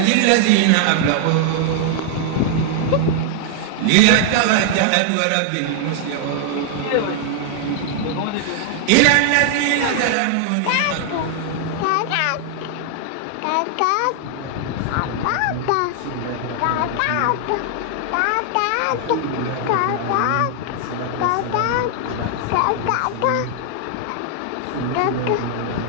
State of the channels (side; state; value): both; different; correlation 0.00